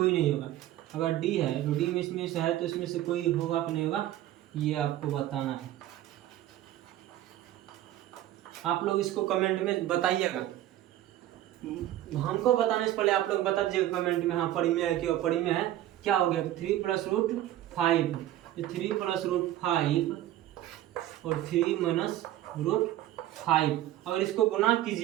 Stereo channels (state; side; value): quieter; left; 13.6 dB